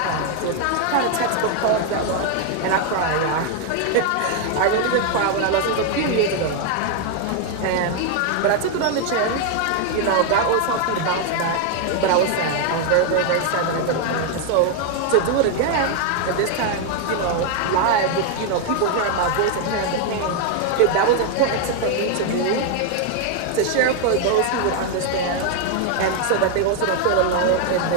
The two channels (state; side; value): different; both; correlation 0.00